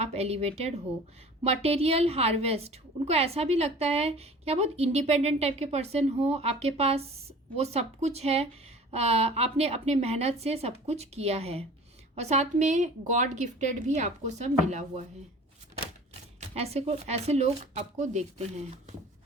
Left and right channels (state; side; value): normal; both; correlation 0.44